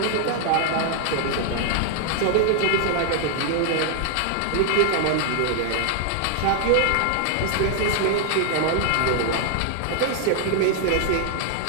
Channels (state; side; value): different; both; correlation 0.00